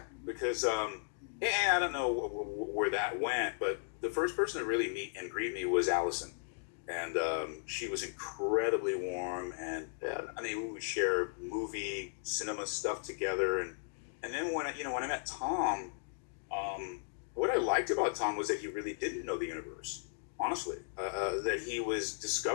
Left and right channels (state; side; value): silent; right; digital silence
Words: Because, I don't know where that went, but the first person to really meet and greet me was Allison. And she was incredibly warm, and I mean, we would share movie, cinema stuff together. And then when I met Tom, what I liked about Tom was that he really didn't know the universe, honestly, that he was